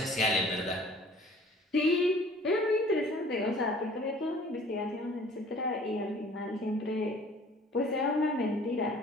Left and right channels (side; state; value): both; normal; correlation 0.51